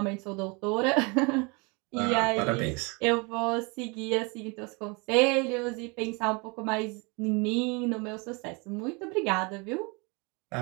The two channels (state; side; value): quieter; left; 29.6 dB